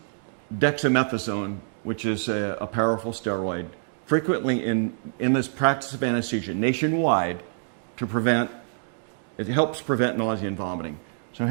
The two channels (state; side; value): silent; left; digital silence